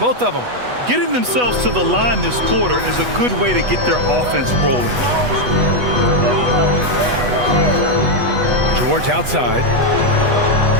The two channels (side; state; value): left; late; 8.2 ms